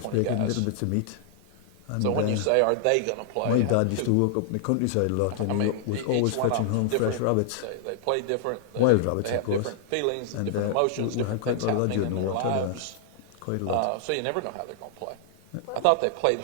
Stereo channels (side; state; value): both; different; correlation -0.01